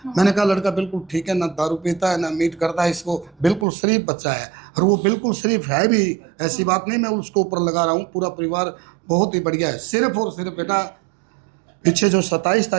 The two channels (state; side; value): drops out; left; at 3.7 s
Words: मैंने कहा लड़का बिल्कुल ठीक है, ना दारू पीता है ना मीट करता है, इसको बिल्कुल शरीफ बच्चा है। और वो बिल्कुल शरीफ है भी, ऐसी बात नहीं मैं उसको ऊपर लगा रहा हूँ। पूरा परिवार बहुत ही बढ़िया है। सिर्फ और सिर्फ बेटा पीछे जो 27